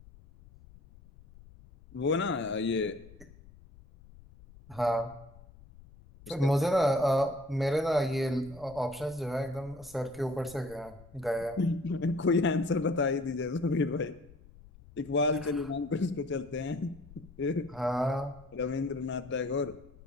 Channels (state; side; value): noise; left; rumble, 22 dB below the sound